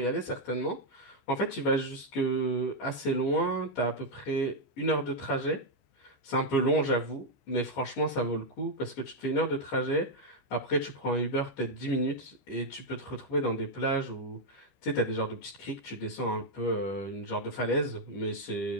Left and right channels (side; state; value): right; late; 15 ms